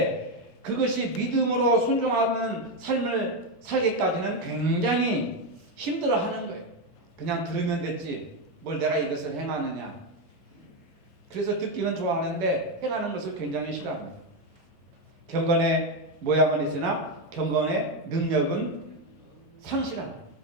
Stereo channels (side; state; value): both; normal; correlation 0.08